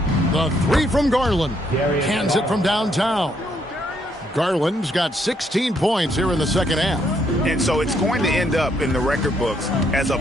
The 3 from Garland. Cans it from downtown. Garland's got 16 points here in the second half. And so it's going to end up in the record books as a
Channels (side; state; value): both; normal; correlation 0.72